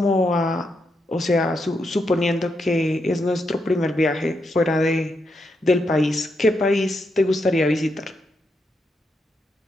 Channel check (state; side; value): normal; both; correlation 0.82